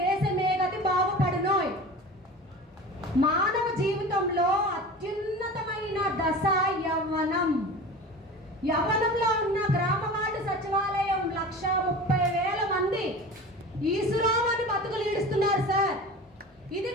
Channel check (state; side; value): normal; both; correlation 0.35